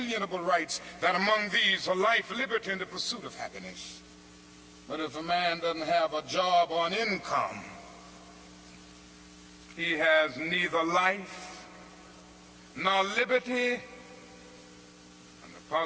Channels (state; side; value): identical; both; correlation 1.00